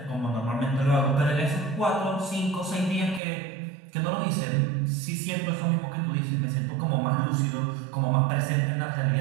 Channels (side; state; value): left; drops out; at 3.2 s